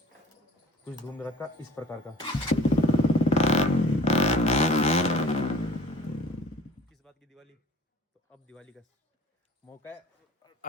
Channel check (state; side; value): normal; both; correlation 0.47